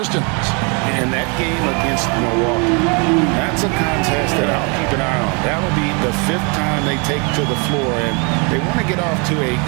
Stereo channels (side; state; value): left; quieter; 33.6 dB